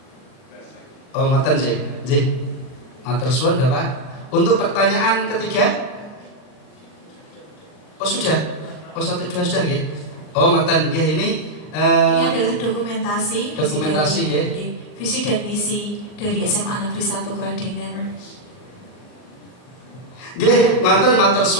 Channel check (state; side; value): late; right; 39 ms